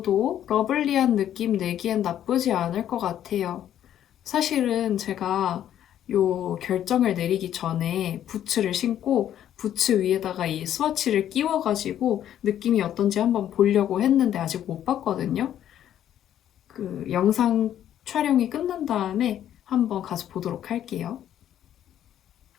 러블리한 느낌 내기엔 나쁘지 않을 것 같아요. 사실은 제가 요 결정을 내리기 전에 부츠를 신고 부츠 위에다가 이 스와치를 끼워가지고 느낌이 어떤지 한번 보려고 했는데 아직 못 봤거든요. 그 영상 촬영이 끝난 다음에 한번 가서 보도록 할게요.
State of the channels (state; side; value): quieter; right; 10.8 dB